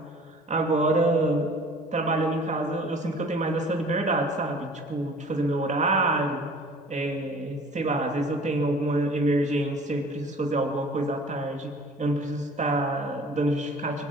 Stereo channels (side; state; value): both; normal; correlation 0.48